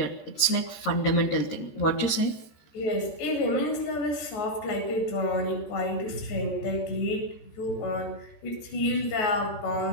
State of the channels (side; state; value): right; late; 14 ms